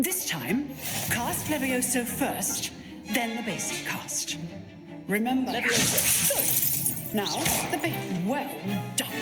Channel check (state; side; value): identical; both; correlation 1.00